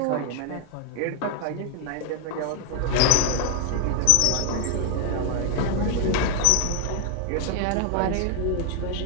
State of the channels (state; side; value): different; both; correlation 0.01